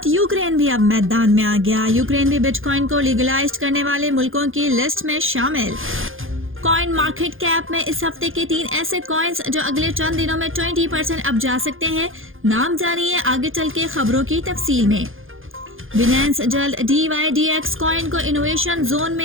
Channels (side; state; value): left; late; 0.59 ms